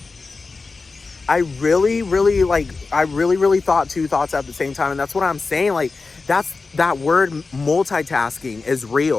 I really, really thought 2 thoughts at the same time. And that's what I'm saying. Like, that word multitasking is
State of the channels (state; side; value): quieter; right; 4.1 dB